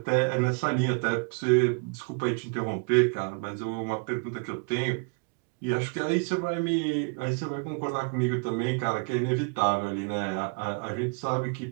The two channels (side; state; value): left; quieter; 37.3 dB